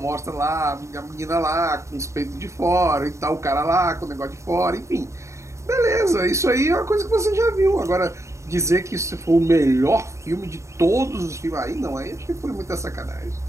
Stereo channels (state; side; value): late; left; 0.14 ms